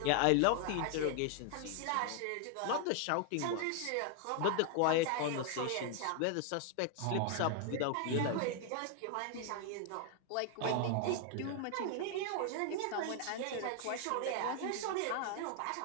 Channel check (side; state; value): both; different; correlation 0.00